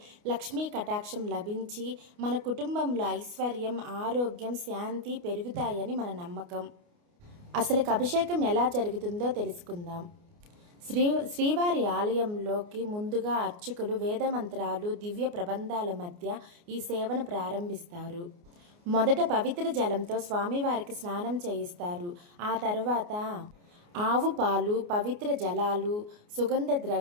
లక్ష్మీ కటాక్షం లభించి మన కుటుంబంలో ఐశ్వర్యం, ఆరోగ్యం, శాంతి పెరుగుతాయని మన నమ్మకం. అసలు అభిషేకం ఎలా జరుగుతుందో తెలుసుకుందాం. శ్రీవారి ఆలయంలోకి ముందుగా అర్చకులు వేదమంత్రాలు, దివ్య ప్రబంధాల మధ్య ఈ సేవను ప్రారంభిస్తారు. మొదట పవిత్ర జలంతో స్వామివారికి స్నానం చేయిస్తారు. ఆ తర్వాత ఆవు పాలు, పవిత్ర జలాలు, సుగంధ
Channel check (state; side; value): late; left; 29 ms